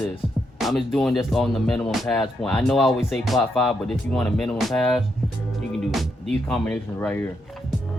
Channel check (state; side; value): normal; both; correlation 0.80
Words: I'm just doing this on the minimum pass point. I know I always say plot 5, but if you want a minimum pass, you can do these combinations right here.